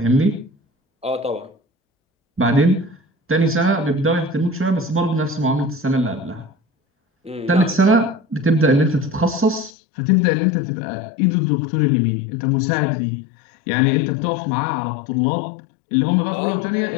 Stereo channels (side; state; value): right; drops out; at 9.7 s